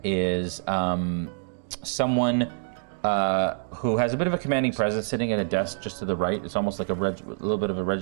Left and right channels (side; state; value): left; silent; digital silence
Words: is someone who has a bit of a commanding presence sitting at a desk just to the right. It's almost like a little bit of a